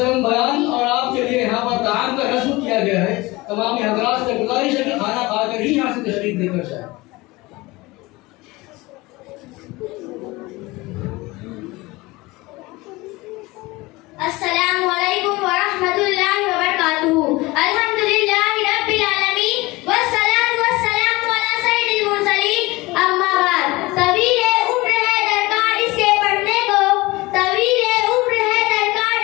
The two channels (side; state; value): right; quieter; 21.7 dB